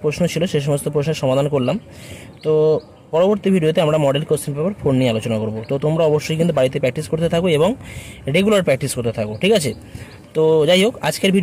প্রশ্ন ছিল সে সমস্ত প্রশ্নের সমাধান করলাম। তো পরবর্তী ভিডিওতে আমরা মডেল কোশ্চেন পেপার 4 নিয়ে আলোচনা করব। তো তোমরা অবশ্যই কিন্তু বাড়িতে প্র্যাকটিস করতে থাকো এবং রেগুলার প্র্যাকটিস করতে থাকো, ঠিক আছে। তো যাই হোক, আজকের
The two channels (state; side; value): identical; both; correlation 1.00